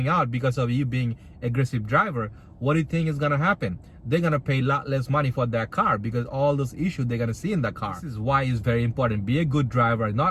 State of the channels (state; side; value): identical; both; correlation 1.00